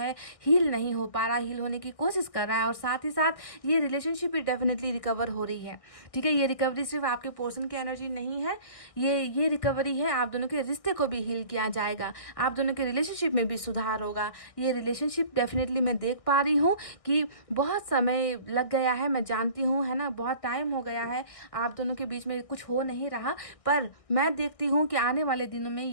हील नहीं हो पा रहा, हील होने की कोशिश कर रहा है। और साथ ही साथ ये रिलेशनशिप भी डेफिनेटली रिकवर हो रही है, ठीक है। ये रिकवरी सिर्फ आपके पोर्शन की एनर्जी नहीं है, ये रिकवरी है, आप दोनों के रिश्ते को भी हील किया जाएगा, आप दोनों के रिलेशनशिप में भी सुधार होगा। ये रिलेशनशिप डेफिनेटली मैं देख पा रही हूँ कि बहुत समय लग गया है, मैं जानती हूँ, है ना, बहुत टाइम हो गया है, आप दोनों के बीच में कुछ हो नहीं रहा, पर मैं देखती हूँ कि आने वाले दिनों में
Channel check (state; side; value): late; right; 1.6 ms